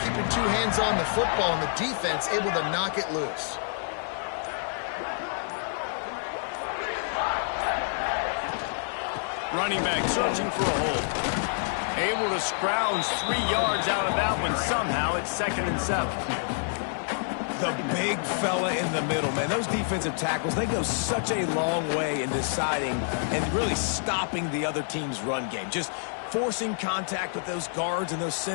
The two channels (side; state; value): right; silent; digital silence